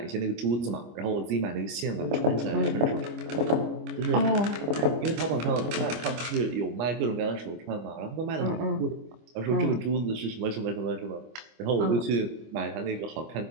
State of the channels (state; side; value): late; left; 25 ms